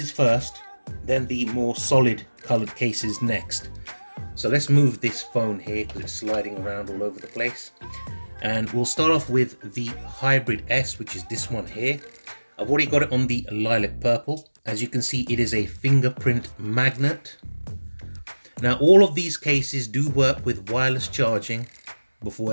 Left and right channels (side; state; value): both; inverted; correlation -1.00